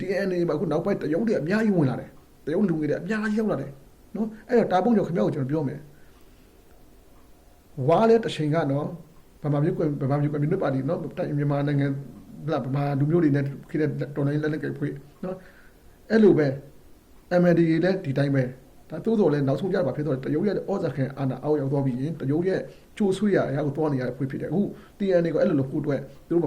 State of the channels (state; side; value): identical; both; correlation 1.00